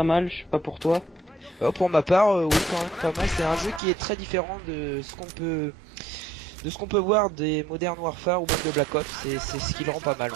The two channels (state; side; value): drops out; left; at 3.8 s